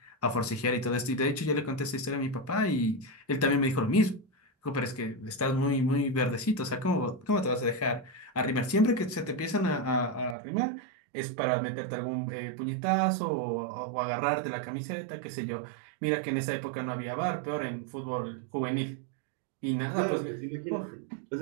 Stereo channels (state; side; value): drops out; left; at 10.4 s